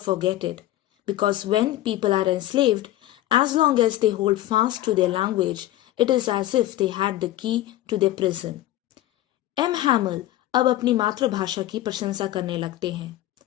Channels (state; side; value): quieter; right; 14.7 dB